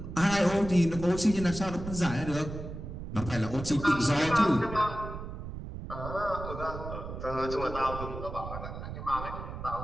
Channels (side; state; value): right; noise; rumble, 9 dB below the sound